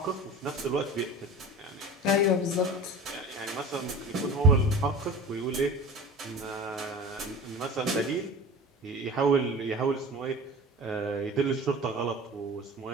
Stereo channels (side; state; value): both; normal; correlation 0.36